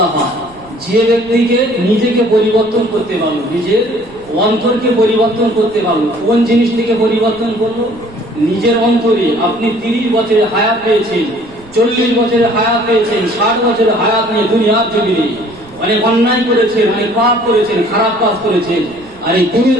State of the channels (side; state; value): right; noise; rumble, 24 dB below the sound